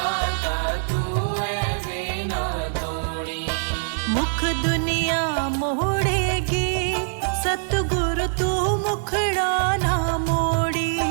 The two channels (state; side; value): silent; left; digital silence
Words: तू ऐसे ना तोड़ी। मुख दुनिया मोड़ेगी सतगुरु तू मुखड़ा ना मोड़ी।